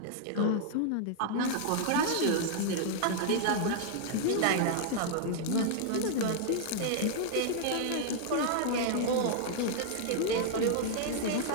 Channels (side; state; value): both; different; correlation -0.01